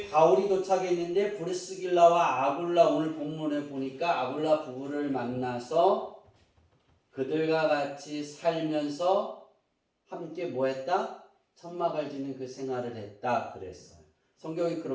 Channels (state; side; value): identical; both; correlation 1.00